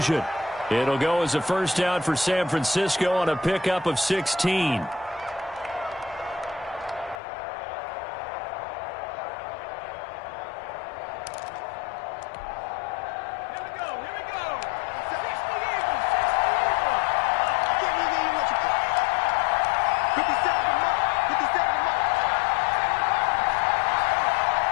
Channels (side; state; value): right; drops out; at 7.2 s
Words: It'll go as a first down for San Francisco on a pickup of 16.